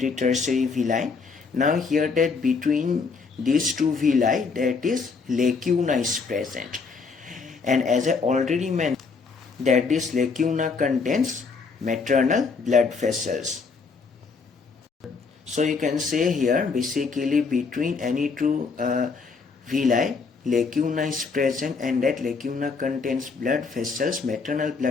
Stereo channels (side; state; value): right; quieter; 4.8 dB